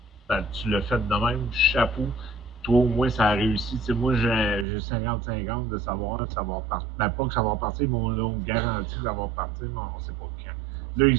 Ben, tu l'as fait de même. Chapeau. Toi, au moins, ça a réussi. Tu sais, moi, j'ai 50-50 de savoir que ça va repartir. Ben, pas que ça va repartir, mais on me garantit que ça va repartir, mais on ne sait pas quand. Là, ils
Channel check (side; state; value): left; drops out; at 4.7 s